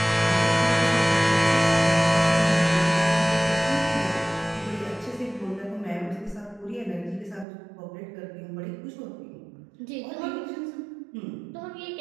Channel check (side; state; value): left; drops out; at 7.5 s